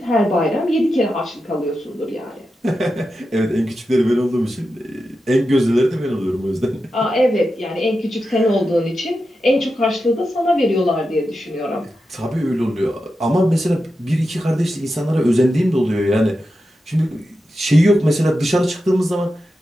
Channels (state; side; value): normal; both; correlation 0.90